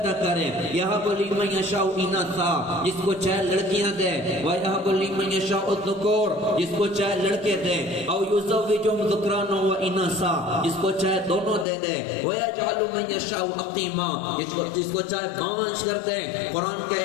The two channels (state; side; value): drops out; right; at 11.7 s